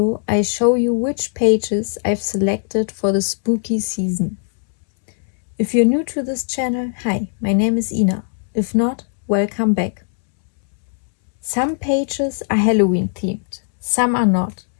I show you which pages I've selected for the spooky season. If you're new to this channel, hi, my name is Ina. If not, welcome back. Some pages are Halloween themed, some are not,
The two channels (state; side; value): silent; right; 66 dB below the other